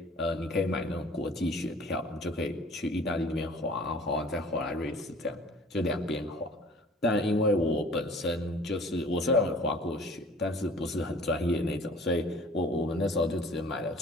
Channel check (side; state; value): both; normal; correlation 0.49